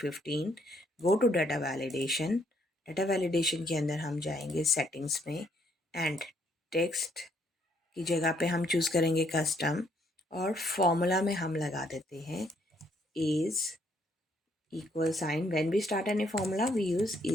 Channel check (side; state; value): both; normal; correlation 0.70